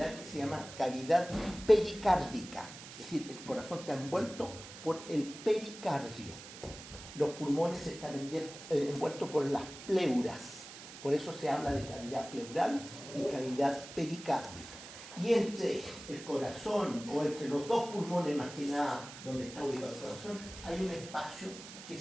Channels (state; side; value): noise; right; hiss, 14 dB below the sound